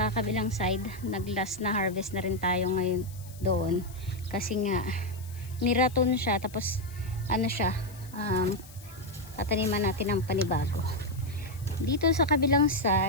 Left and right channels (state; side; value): noise; left; hiss, 20 dB below the sound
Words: kabilang side, naglas na harvest na rin tayo ngayon doon, kasi nga niraton siya, tapos tataniman natin ng panibago. Dito sa kabilang